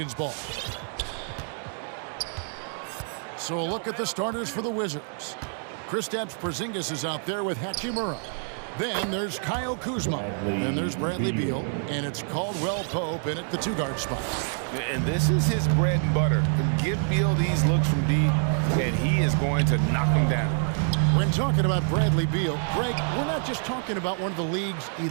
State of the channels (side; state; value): left; silent; 55 dB below the other